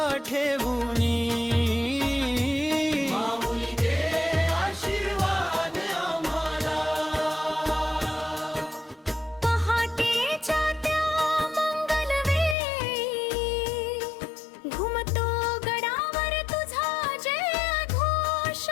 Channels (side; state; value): right; drops out; at 12.6 s